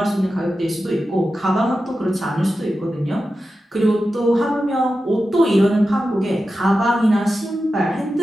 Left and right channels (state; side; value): normal; both; correlation 0.92